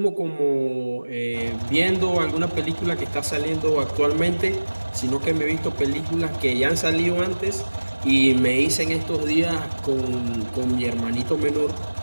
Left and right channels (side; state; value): both; inverted; correlation -1.00